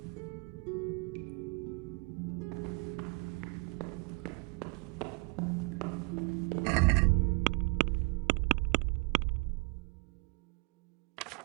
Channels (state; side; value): quieter; left; 28.6 dB